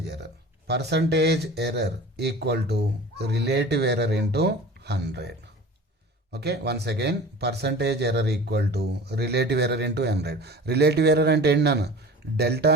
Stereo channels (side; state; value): both; normal; correlation 0.39